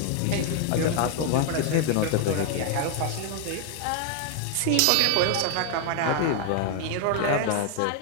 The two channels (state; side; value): different; both; correlation 0.00